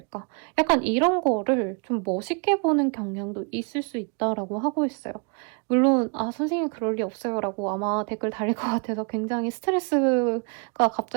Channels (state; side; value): quieter; left; 37.6 dB